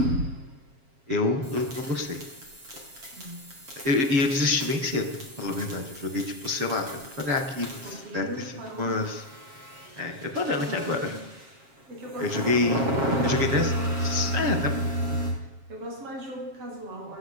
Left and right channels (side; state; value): left; late; 7.4 ms